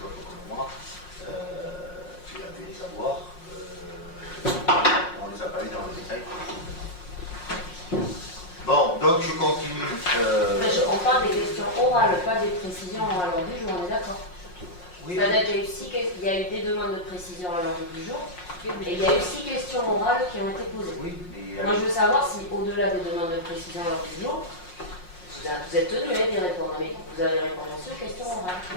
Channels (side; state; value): right; late; 5.5 ms